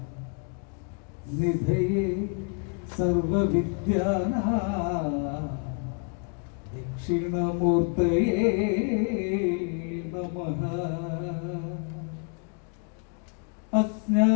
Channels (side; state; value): right; quieter; 38.3 dB